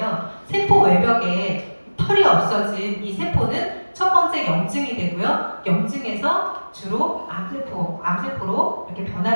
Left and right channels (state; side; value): inverted; both; correlation -1.00